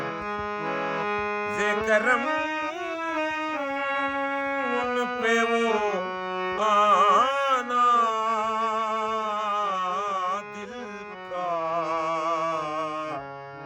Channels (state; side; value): identical; both; correlation 1.00